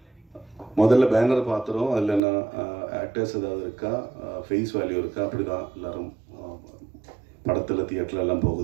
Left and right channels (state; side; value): drops out; left; at 2.2 s